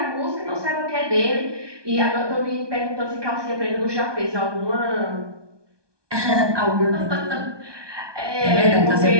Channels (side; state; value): left; late; 1.2 ms